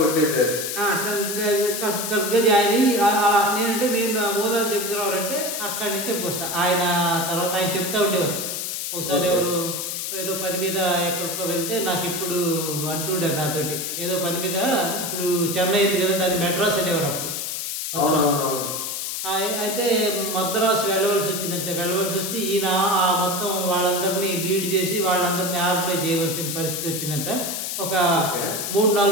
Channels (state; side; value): noise; left; hiss, 4 dB below the sound